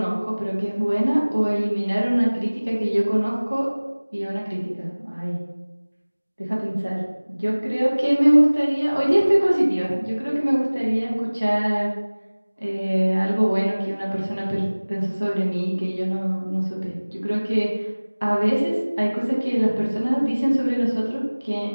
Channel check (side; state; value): both; inverted; correlation -1.00